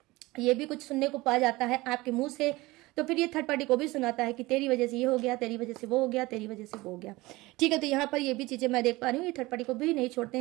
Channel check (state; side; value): quieter; left; 20.8 dB